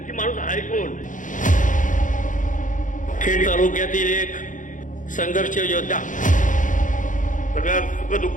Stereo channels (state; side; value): late; right; 0.37 ms